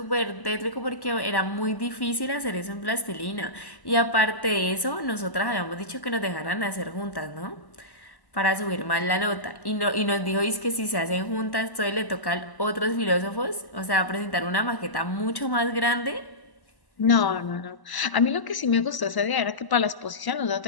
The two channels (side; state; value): right; late; 1.0 ms